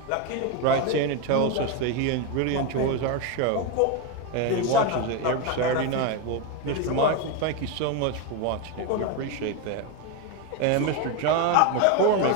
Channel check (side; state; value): both; different; correlation 0.02